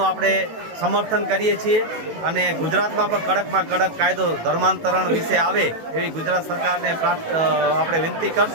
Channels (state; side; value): late; left; 18 ms